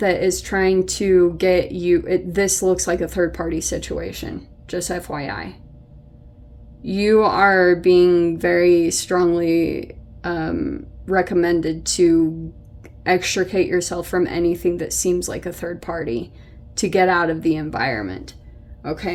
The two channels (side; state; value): both; identical; correlation 1.00